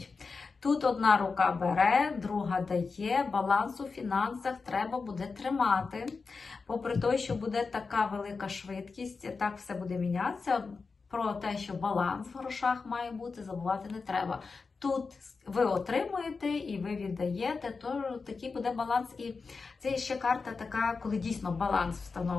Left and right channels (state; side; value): quieter; right; 4.6 dB